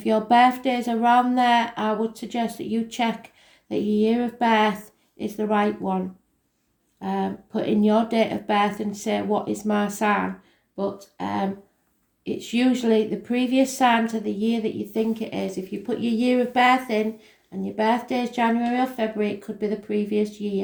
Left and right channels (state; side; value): identical; both; correlation 1.00